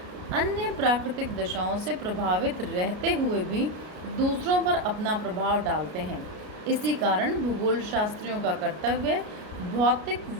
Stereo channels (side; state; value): left; late; 33 ms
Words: अन्य प्राकृतिक दशाओं से प्रभावित रहते हुए भी दूसरों पर अपना प्रभाव डालते हैं। इसी कारण भूगोल शास्त्रियों का कर्तव्य भौतिक